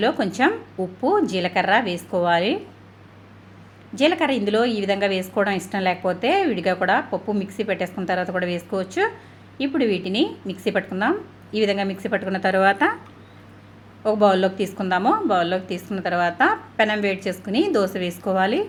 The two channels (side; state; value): both; identical; correlation 1.00